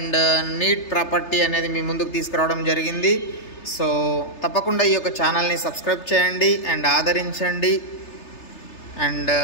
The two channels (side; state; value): right; late; 3.3 ms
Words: నీట్ ప్రాపర్టీ అనేది మీ ముందుకు తీసుకురావడం జరిగింది. సో తప్పకుండా ఈ యొక్క ఛానల్ని సబ్స్క్రైబ్ చేయండి అండ్ ఆదరించండి. అండ్